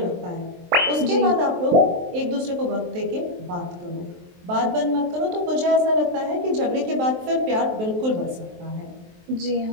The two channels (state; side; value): late; left; 23 ms